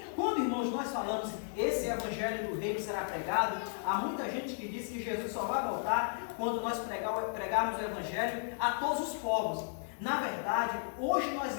Quando, irmãos, nós falamos esse evangelho do reino será pregado, há muita gente que diz que Jesus só vai voltar quando nós pregarmos o evangelho a todos os povos. Na verdade, hoje nós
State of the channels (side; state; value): right; silent; digital silence